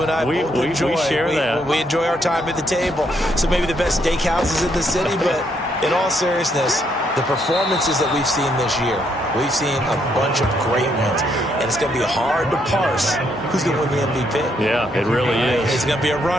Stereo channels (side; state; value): both; normal; correlation 0.74